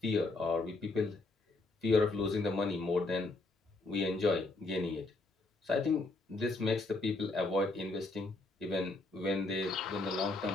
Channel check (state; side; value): quieter; right; 3.3 dB